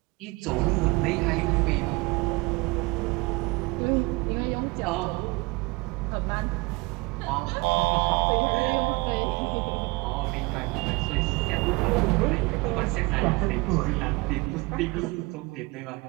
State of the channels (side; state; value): left; quieter; 25.3 dB